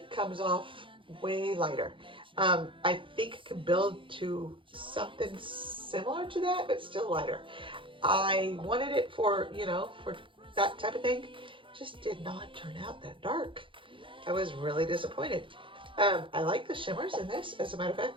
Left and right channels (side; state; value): left; late; 0.25 ms